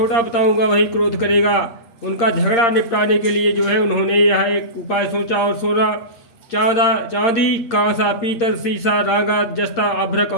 बताऊंगा वही क्रोध करेगा। उनका झगड़ा निपटाने के लिए उन्होंने यह एक उपाय सोचा और सोना, चांदी, कांसा, पीतल, शीशा, रागा, जस्ता, अभ्रक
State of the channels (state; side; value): late; right; 8.7 ms